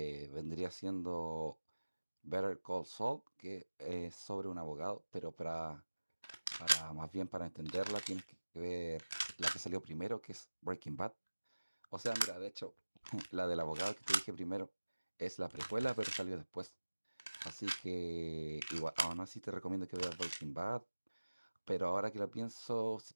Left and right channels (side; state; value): both; inverted; correlation -1.00